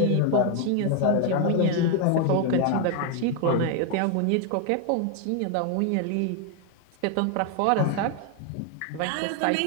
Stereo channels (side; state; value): both; different; correlation 0.01